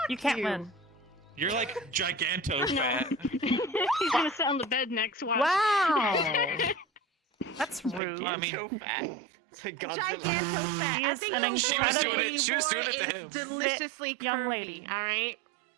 You can't win. You're like giganto fat. He's gonna sit on the bed next. Watch. Wow. That's rude. Giganto fat. Giganto fat. She I is think an the incredibly word She was doing it to him. deliciously fit young curvy, lady. All right.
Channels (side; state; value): left; drops out; at 8.0 s